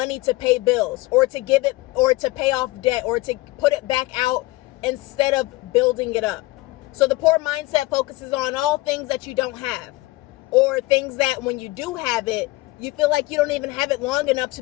to pay bills or to give it or to pay off debt or to put it back out instead of building it up. So the poor mindset focuses on all things that you don't have, or things that when you do have it, you feel like you don't even have it long enough to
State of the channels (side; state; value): right; quieter; 20.6 dB